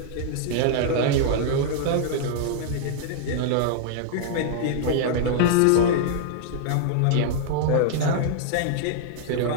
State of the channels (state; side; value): different; both; correlation -0.01